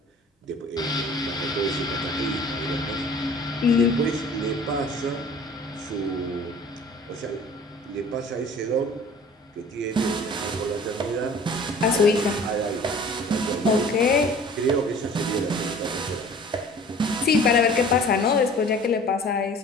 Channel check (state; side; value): normal; both; correlation 0.47